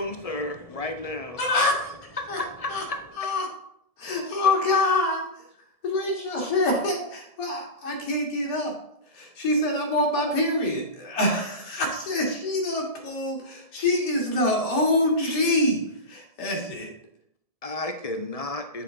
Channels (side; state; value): right; late; 1.7 ms